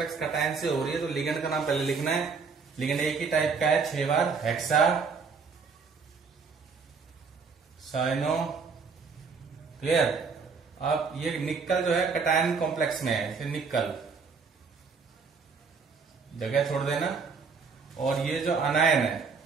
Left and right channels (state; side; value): quieter; left; 5.2 dB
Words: कटायन से हो रही है, तो लिगेंड का नाम पहले लिखना है। लिगेंड एक ही टाइप का है, 6 बार हेक्सा साइनो। क्लियर। अब ये निकल जो है कटायन कॉम्प्लेक्स में है, निकल जगह छोड़ देना। और ये जो अनायन है